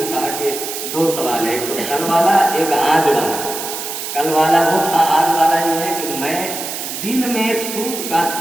کہا کہ دو سوال ہے، ایک تو کل والا، ایک آج والا۔ کل والا وہ تھا، آج والا یہ ہے کہ میں دن میں سوت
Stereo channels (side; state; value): right; noise; hiss, 6 dB below the sound